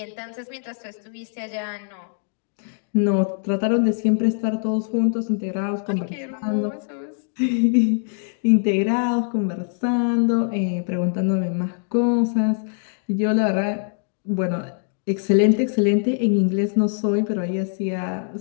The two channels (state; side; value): silent; right; 58 dB below the other